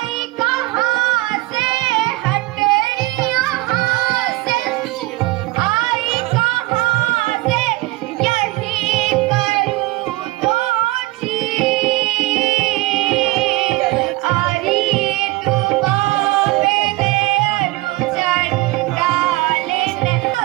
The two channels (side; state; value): left; quieter; 20.2 dB